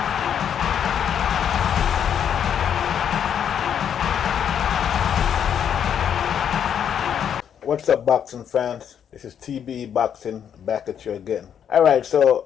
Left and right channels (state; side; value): quieter; right; 8.6 dB